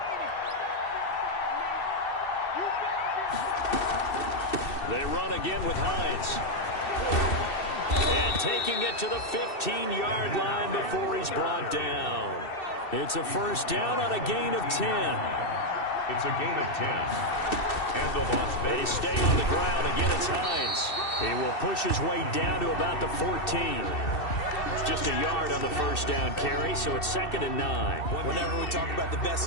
They run again with Hines. And taking it to the 15-yard line before he's brought down. It's a 1st down on a gain of 10. It's a gain of 10. And the loss. They stay on the ground. Again, it's Hines. He will push his way down to about the 14. Just a yard on the 1st down carry, so it's 2nd and 9. Whenever we talk about the best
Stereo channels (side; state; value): right; late; 2.7 ms